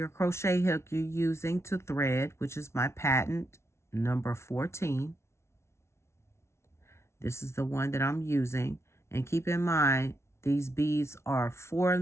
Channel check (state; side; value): late; right; 0.13 ms